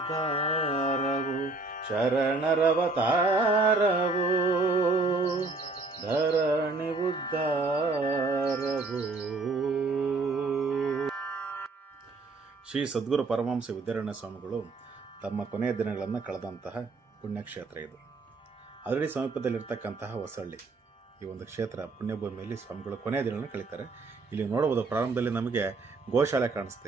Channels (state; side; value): quieter; left; 3.6 dB